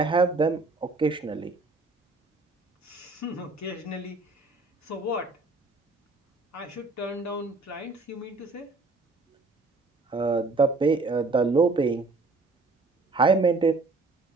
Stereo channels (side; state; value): left; quieter; 3.4 dB